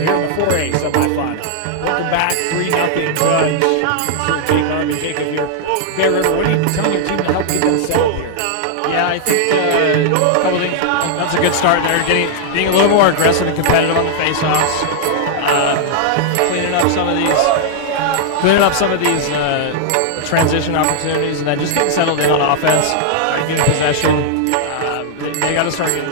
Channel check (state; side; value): different; both; correlation -0.01